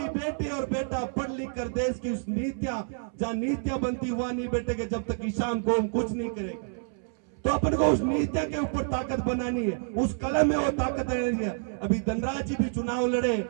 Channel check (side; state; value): left; silent; 59 dB below the other